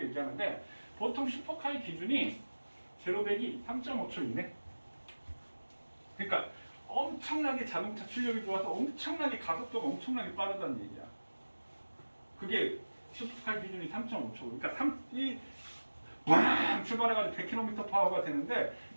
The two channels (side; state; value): both; inverted; correlation -1.00